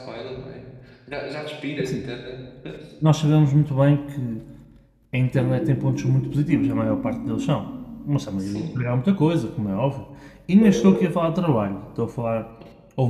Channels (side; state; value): both; identical; correlation 1.00